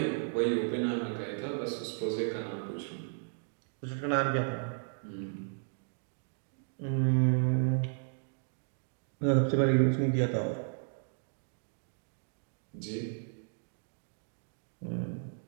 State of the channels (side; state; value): left; silent; digital silence